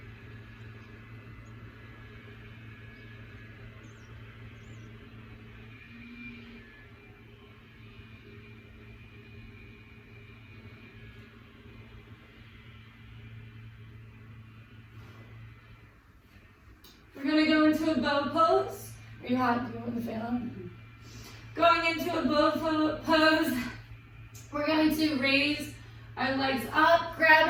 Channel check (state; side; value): identical; both; correlation 1.00